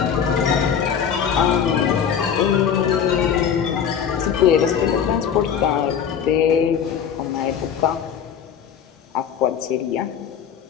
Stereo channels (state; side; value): quieter; right; 7.9 dB